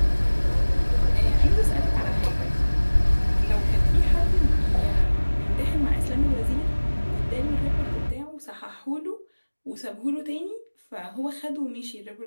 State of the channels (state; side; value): inverted; both; correlation -1.00